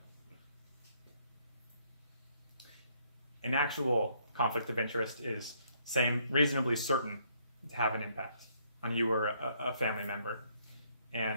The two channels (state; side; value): inverted; both; correlation -0.68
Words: An actual conflict of interest is reasonably certain to have an impact on you or a family member.